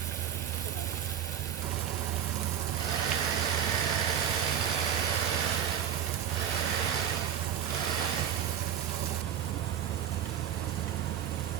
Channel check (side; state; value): left; quieter; 9.3 dB